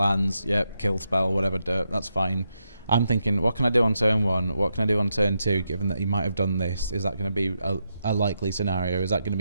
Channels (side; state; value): both; inverted; correlation -0.84